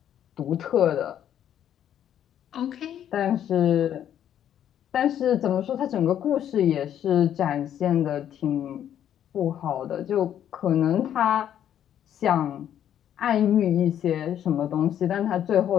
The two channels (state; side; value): quieter; right; 10.2 dB